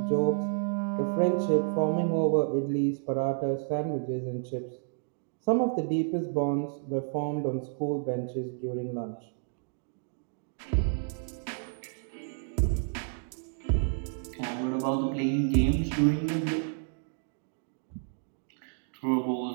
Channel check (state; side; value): silent; left; digital silence